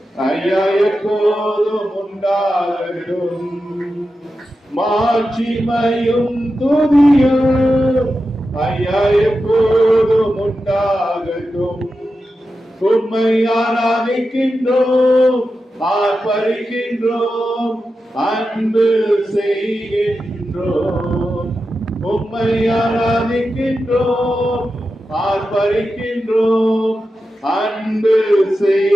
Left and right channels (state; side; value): normal; both; correlation 0.91